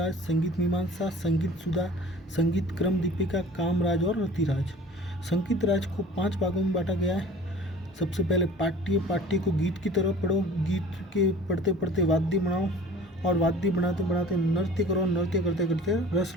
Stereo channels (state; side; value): normal; both; correlation 0.44